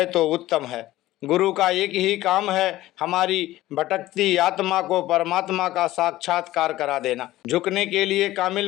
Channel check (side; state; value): right; quieter; 16.0 dB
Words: तो उत्तम है। गुरु का एक ही काम है, हमारी भटकती आत्मा को परमात्मा का साक्षात्कार करा देना। झुकने के लिए